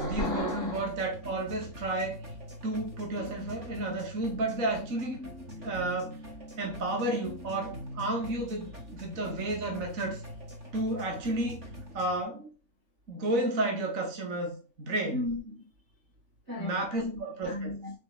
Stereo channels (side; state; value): left; late; 3.5 ms